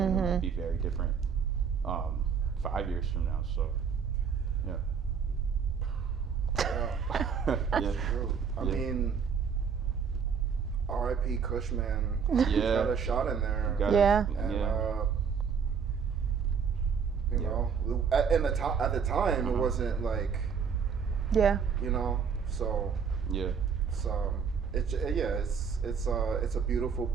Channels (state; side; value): quieter; left; 6.5 dB